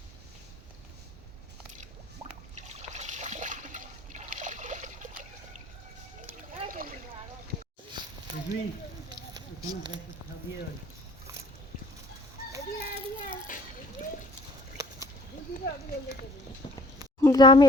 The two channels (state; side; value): normal; both; correlation 0.53